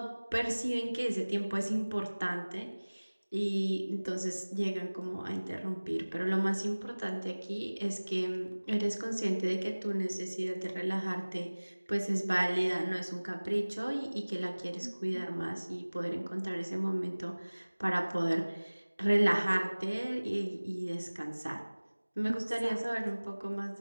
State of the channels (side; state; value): both; inverted; correlation -1.00